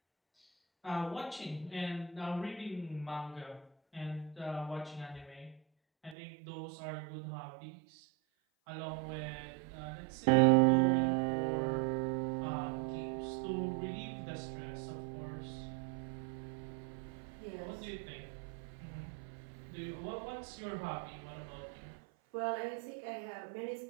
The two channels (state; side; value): drops out; left; at 6.2 s